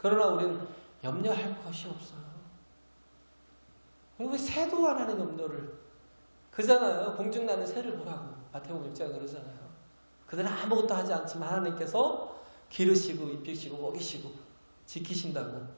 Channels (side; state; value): both; inverted; correlation -1.00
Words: 우리는 염려할 것이 없어요. 왜 새도 안 하는 염려를 그잖아요. 공중나는 새를 보라고 마태복음 6장에 그러잖아요. 그들은 아무것도 하지 않지만 하나님께서 기르시고 입히시고 먹이시고 지키신다고.